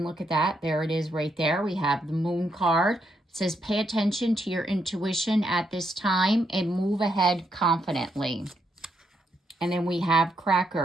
look at that. There it is right there. We have the Moon card. It says, pay attention to your intuition at this time and move ahead confidently. And then we have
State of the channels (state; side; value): normal; both; correlation 0.79